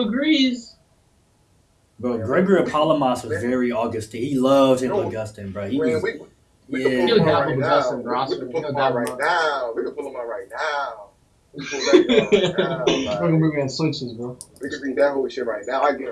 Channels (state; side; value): identical; both; correlation 1.00